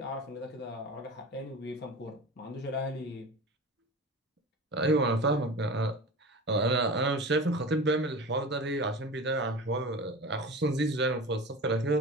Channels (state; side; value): normal; both; correlation 0.33